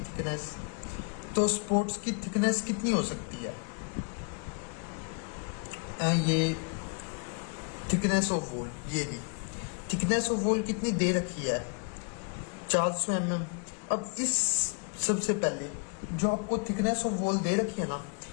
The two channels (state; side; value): quieter; right; 36.3 dB